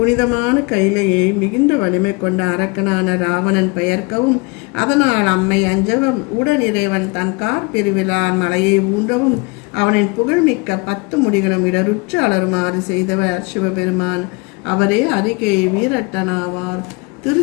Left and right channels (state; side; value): quieter; right; 28.5 dB